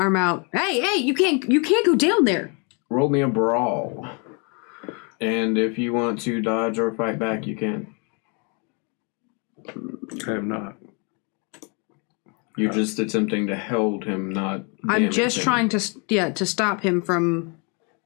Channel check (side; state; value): right; quieter; 34.6 dB